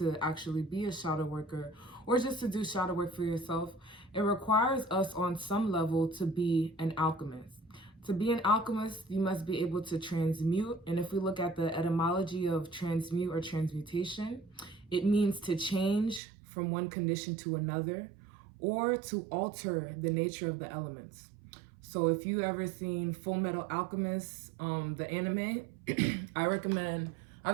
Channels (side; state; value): left; drops out; at 16.2 s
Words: actually be a shadow worker, or just to do shadow work for yourself, it requires us on some level to be an alchemist. To be an alchemist, you must be able to transmute. And if we look at the etymology of transmute or transmutation, it means to change from one condition to another, or to alter the nature of the elements. So if you ever seen Full Metal Alchemist, the anime, I recommend, I